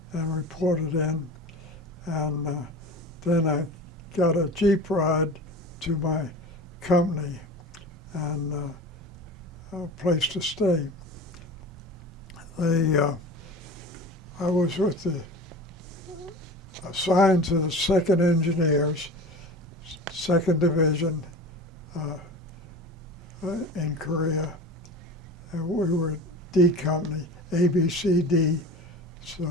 and reported in, and then I got a Jeep ride to my company and a place to stay. I was assigned to the 2nd Engineers, 2nd Division in Korea. And we were D company, ABCD.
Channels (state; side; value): normal; both; correlation 0.34